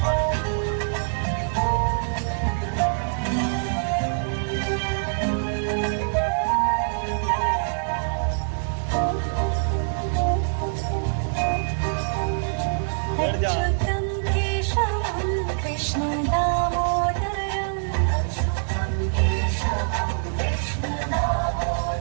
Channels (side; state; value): left; silent; digital silence